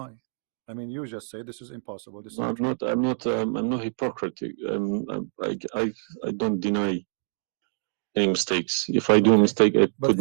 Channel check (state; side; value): silent; left; digital silence